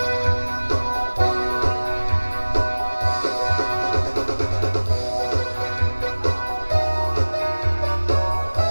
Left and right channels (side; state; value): both; inverted; correlation -1.00